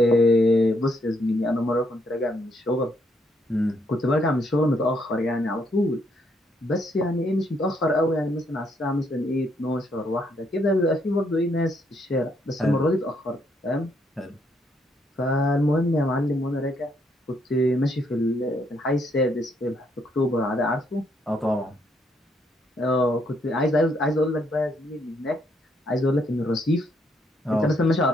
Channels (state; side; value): normal; both; correlation 0.73